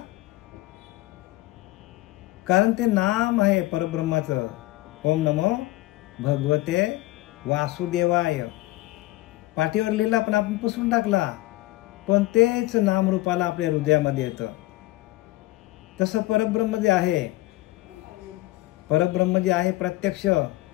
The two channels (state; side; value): quieter; right; 18.6 dB